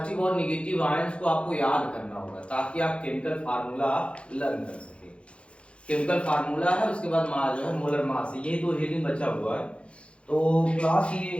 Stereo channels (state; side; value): late; right; 0.059 ms